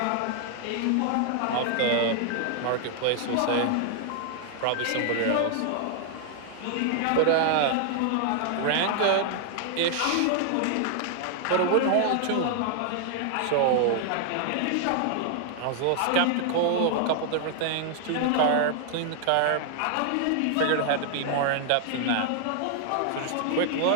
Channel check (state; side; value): different; both; correlation 0.00